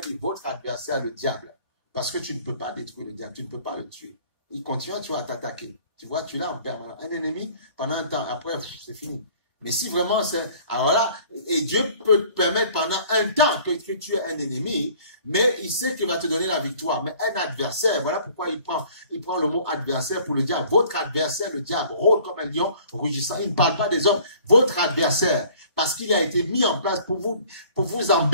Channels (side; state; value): both; inverted; correlation -0.53